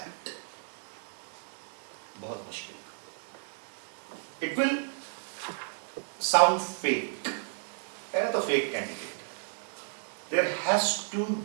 बहुत मुश्किल. It will sound fake. है तो fake candidate. There has to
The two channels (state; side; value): silent; left; digital silence